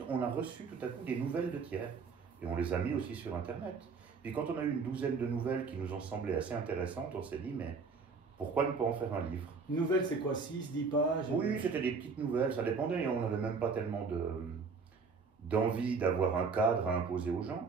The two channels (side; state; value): left; quieter; 5.0 dB